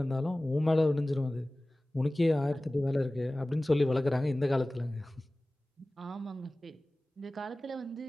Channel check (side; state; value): both; normal; correlation 0.98